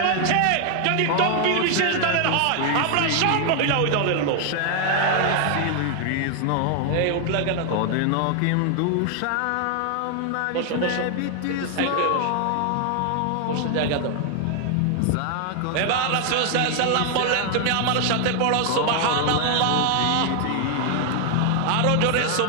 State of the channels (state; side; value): different; both; correlation 0.00